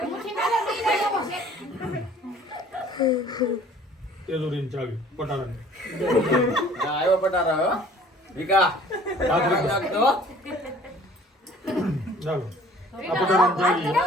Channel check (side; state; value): both; normal; correlation 0.52